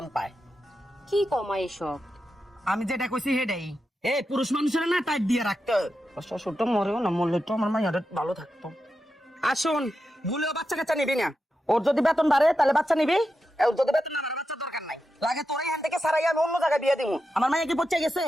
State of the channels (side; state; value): both; normal; correlation 0.89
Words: পায়। কি কমাই সব? আমি যেটা কইছি সেটাই। পুরুষ মানুষের না টাইট দিয়ে রাখতে শ্বশুরটা মরেও না, মরলে তো আমার মাইয়াটা ভালো থাকতো। আসুন, ভুলেও বাচ্চা কাচ্চা নিবি না। ওর যদি বেতন বাড়ে তাহলে বাচ্চা নিবি, ওর যদি বেতন না বাড়ে বাচ্চা দরকার নাই। লাগে তোর এখান থেকে সারাই আমি অন্য জায়গায় বিয়ে দিব। আমার মাইয়া কি পচে গেছে?